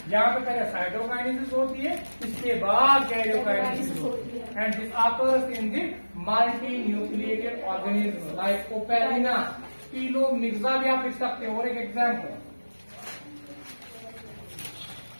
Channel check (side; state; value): both; inverted; correlation -1.00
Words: यहाँ पे पहले साइटोकाइनेसिस होती है, इसके बाद कैरियोकाइनेसिस होती है। And this occurs in the multi nucleated organism like Opalina, Pelomyxa भी आप लिख सकते हो। और एक एग्जाम्पल